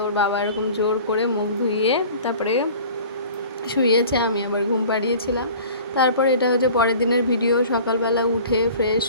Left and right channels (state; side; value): inverted; both; correlation -0.44